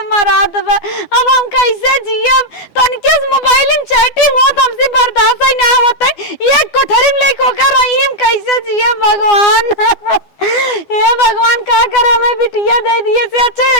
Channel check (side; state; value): right; late; 12 ms